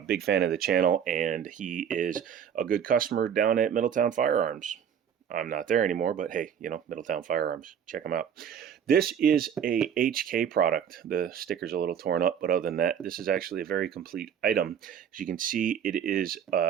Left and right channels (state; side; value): quieter; left; 8.4 dB